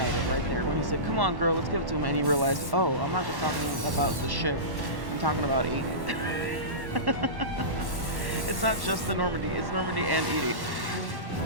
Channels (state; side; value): late; left; 1.1 ms